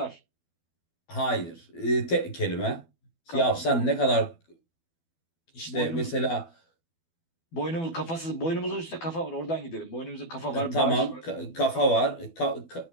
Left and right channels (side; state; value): right; late; 12 ms